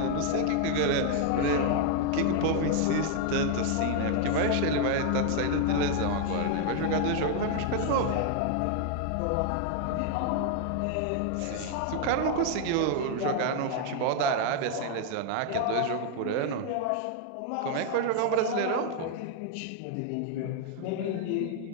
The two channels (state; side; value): different; both; correlation 0.00